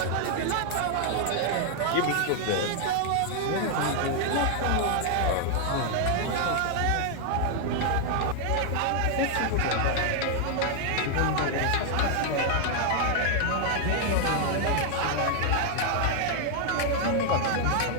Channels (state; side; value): different; both; correlation 0.00